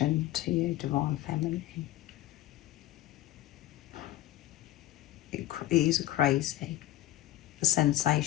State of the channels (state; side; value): quieter; right; 15.0 dB